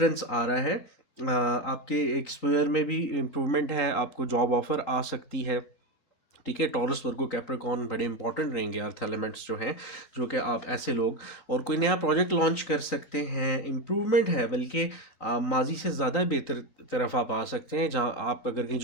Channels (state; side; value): late; right; 3.9 ms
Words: आ रहा है। आपके एक्सपोजर में भी इम्प्रूवमेंट है, आपको जॉब ऑफर आ सकती है। ठीक है, टॉरस, वर्गो, कैप्रिकॉर्न बड़े इंपॉर्टेंट रहेंगे अर्थ एलिमेंट्स जो हैं, जो कि आप ऐसे लोग और कोई नया प्रोजेक्ट लॉन्च कर सकते हैं। इम्प्रूवमेंट है, बल्कि माजी से ज़्यादा बेहतर तरफ आप आ सकते हैं। जहाँ आप अगर कहीं